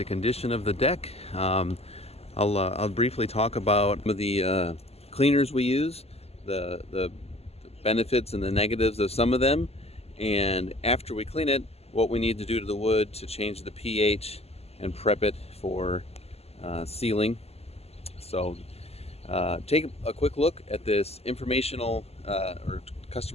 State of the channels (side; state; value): right; late; 0.29 ms